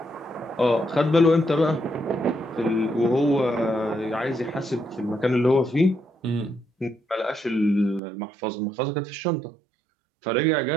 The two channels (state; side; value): drops out; left; at 8.0 s